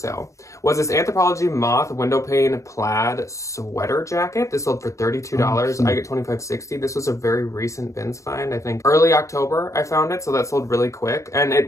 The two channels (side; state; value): right; late; 0.15 ms